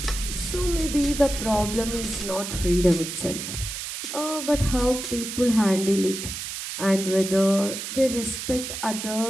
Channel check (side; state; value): right; noise; hiss, 6 dB below the sound